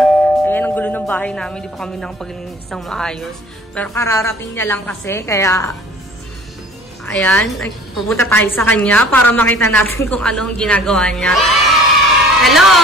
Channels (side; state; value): both; normal; correlation 0.49